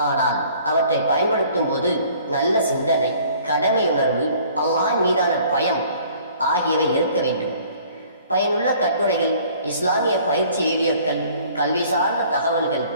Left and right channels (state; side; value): inverted; both; correlation -0.54